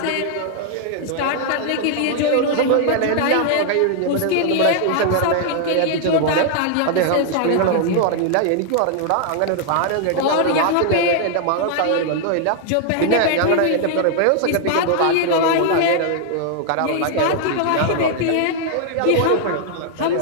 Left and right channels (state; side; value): different; both; correlation 0.00